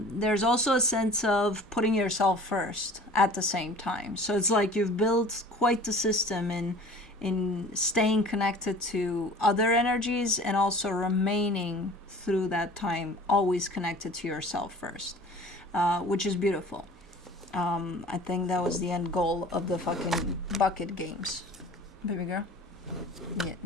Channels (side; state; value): both; normal; correlation 0.44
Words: also a sense of putting yourself first at the same time. So it's like you've built quite the system in staying connected to other energies and also remaining through that time always connected to yourself first, which is beautiful. I think that was the end goal of the fucking bucket games. Baby girl? Yeah,